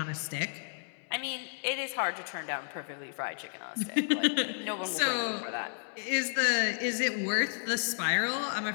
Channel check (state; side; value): silent; right; 56 dB below the other